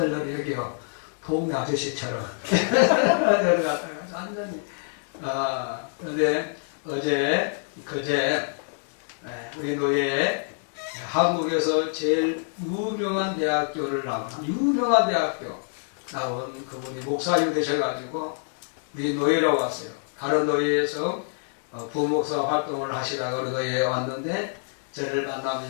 저를 여기요. 동네 아저씨처럼. 완전히. 그런데 그제 우리 노예 한국에서 제일 유명한 대학교를 유명한 대학교 나온 그분이 목사님 되셔가지고 우리 노예로 왔어요. 다른 노예에서 부목사 활동을 하시다가 어느 노예에 왔는데, 저를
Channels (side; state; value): right; silent; 61 dB below the other